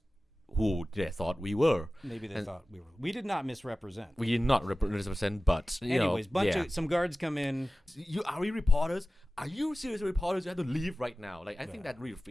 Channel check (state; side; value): normal; both; correlation 0.96